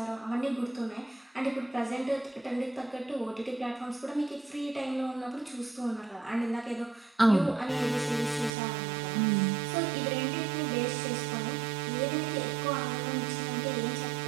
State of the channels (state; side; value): drops out; left; at 8.5 s